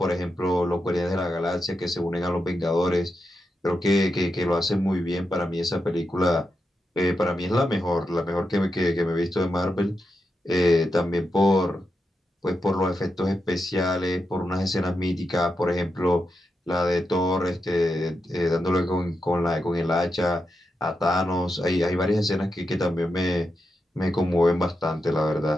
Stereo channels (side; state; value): both; normal; correlation 0.87